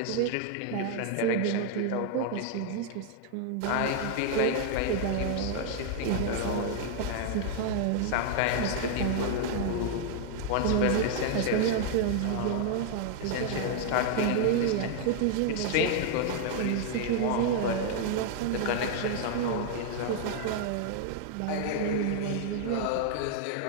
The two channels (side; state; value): both; different; correlation 0.00